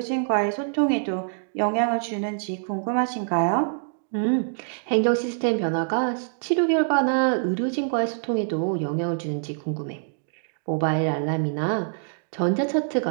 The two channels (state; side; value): silent; left; digital silence